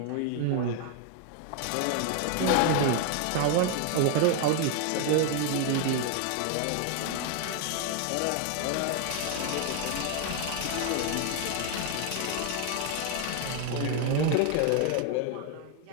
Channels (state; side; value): different; both; correlation 0.00